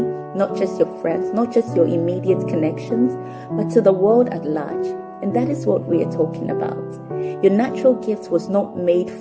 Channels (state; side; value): identical; both; correlation 1.00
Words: not just your friends, not just your immediate connections, but to the world at large. And that is what we are talking about. Your natural gift was not made